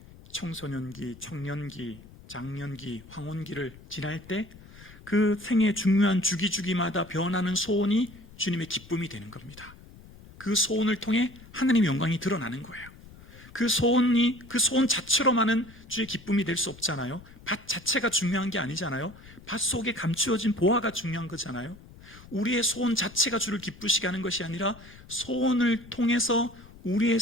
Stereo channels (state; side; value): noise; left; rumble, 20 dB below the sound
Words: 청소년기, 청년기, 장년기, 황혼기를 지날 때 그 생의 중요한 주기마다 변하는 소원이 주님의 기쁨이 되는 겁니다. 그 소원을 통해 하나님의 영광이 드러나는 거예요. 그 소원 자체로만은 주의 기쁨이 될 수 없잖아요. 밭 자체가 중요한 게 아니잖아요. 밭 속에 감추어진 보화가 중요한 거잖아요. 우리의 소원 자체가 주를 기쁘시게 하는 것이 아니라 소원을 통해서 우리의